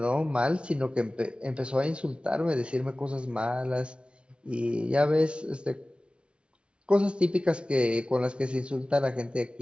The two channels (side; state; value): left; late; 0.058 ms